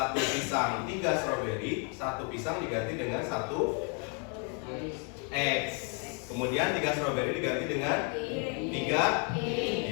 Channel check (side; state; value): right; quieter; 38.2 dB